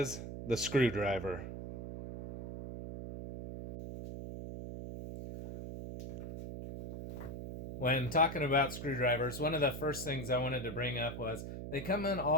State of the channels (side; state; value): right; noise; hum, 8 dB below the sound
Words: the screwdriver. When talking about screwdrivers, one of the first things I wanted to bring up was they come in